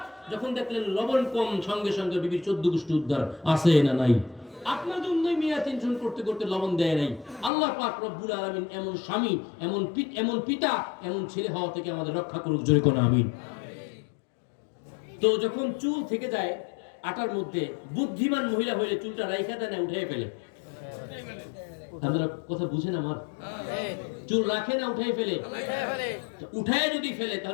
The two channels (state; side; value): drops out; right; at 7.5 s